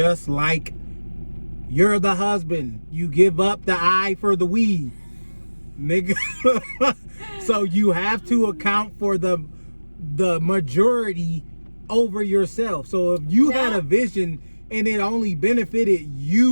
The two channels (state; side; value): inverted; both; correlation -1.00